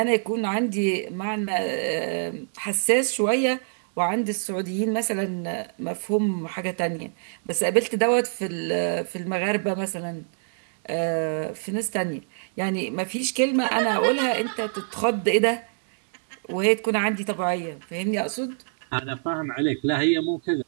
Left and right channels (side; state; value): left; silent; digital silence